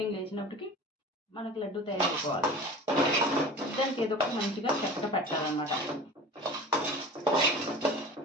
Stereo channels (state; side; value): normal; both; correlation 0.37